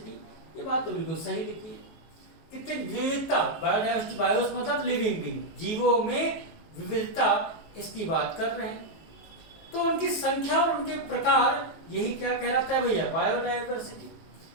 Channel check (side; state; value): right; late; 19 ms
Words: ये बात तो बिल्कुल सही लिखी है। कितनी विविधता, बायोडाइवर्सिटी, बायोस मतलब लिविंग बीइंग, जीवों में विविधता, इसकी बात कर रहे हैं। तो उनकी संख्या और उनके प्रकार, यही क्या कहलाता है भैया, बायोडाइवर्सिटी।